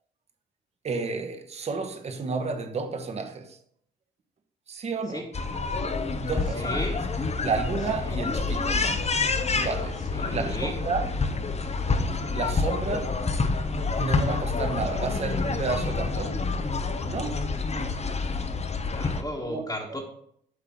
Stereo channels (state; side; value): normal; both; correlation 0.47